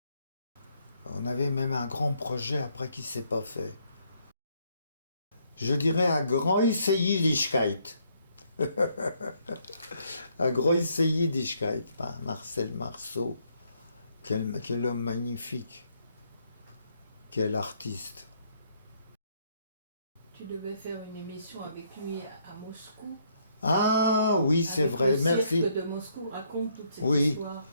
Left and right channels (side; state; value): both; inverted; correlation -0.71